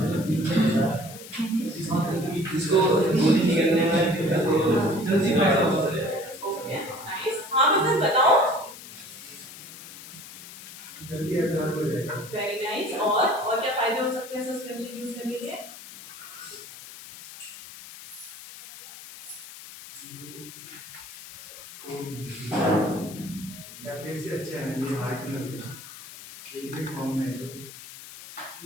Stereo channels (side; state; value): left; noise; hiss, 15 dB below the sound